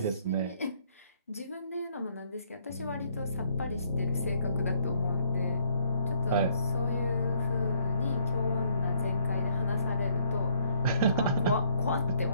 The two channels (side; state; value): both; inverted; correlation -0.66